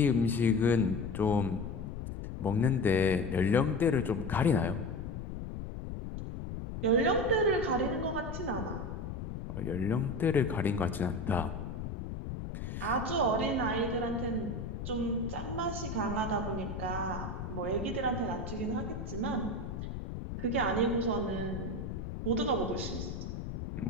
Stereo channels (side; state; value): left; noise; rumble, 6 dB below the sound